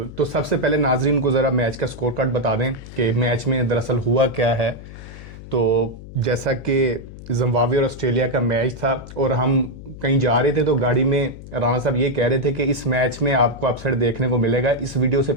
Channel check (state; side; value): noise; left; hum, 15 dB below the sound